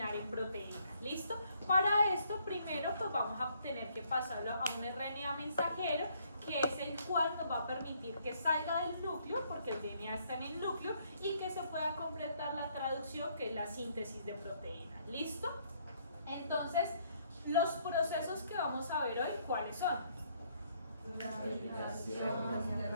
en proteína. ¿Listo? Para esto, primero, pues vamos a tener que pasarlo a un RNA mensajero, que es el cual nos va a permitir que salga del núcleo, porque el DNA está en el núcleo, y que se pueda completar la traducción, que es la síntesis de proteína. ¿Listo? Entonces, los procesos que vamos a ver hoy, ¿cuáles son?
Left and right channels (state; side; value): inverted; both; correlation -0.68